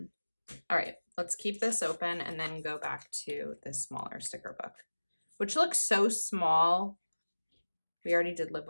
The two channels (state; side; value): inverted; both; correlation -1.00